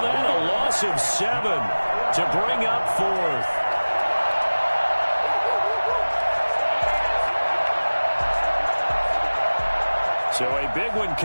that a loss of 7 to bring up 4th. So a big one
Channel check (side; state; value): both; inverted; correlation -1.00